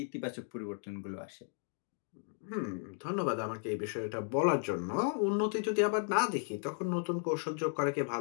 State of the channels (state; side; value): silent; right; 54 dB below the other